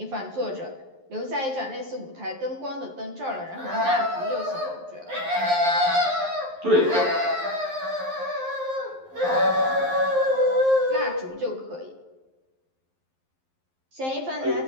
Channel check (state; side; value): late; left; 11 ms